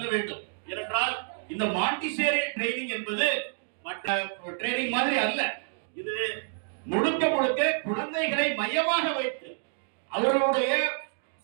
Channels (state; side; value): silent; left; digital silence